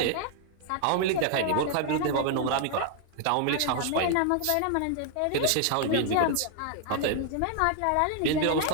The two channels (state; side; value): different; both; correlation 0.00